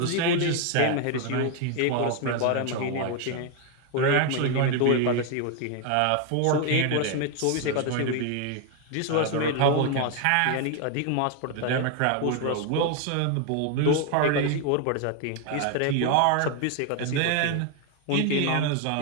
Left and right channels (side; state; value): both; different; correlation 0.01